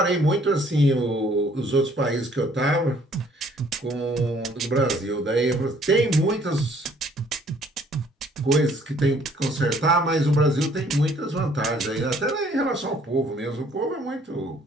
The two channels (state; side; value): normal; both; correlation 0.60